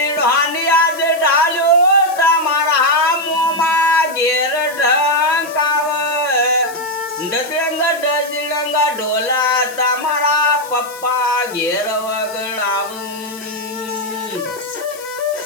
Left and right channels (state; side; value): noise; left; hiss, 17 dB below the sound